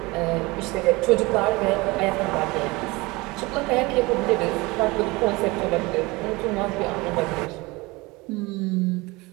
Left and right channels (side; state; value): left; quieter; 23.3 dB